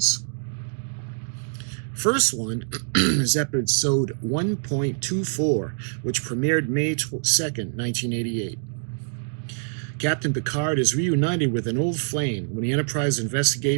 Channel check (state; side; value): silent; left; digital silence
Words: First one is episode 1.24, which premiered May 2nd, 1988. Captain Picard is reunited with an old flame when the Enterprise